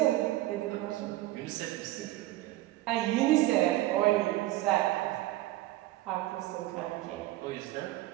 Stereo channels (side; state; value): left; quieter; 16.4 dB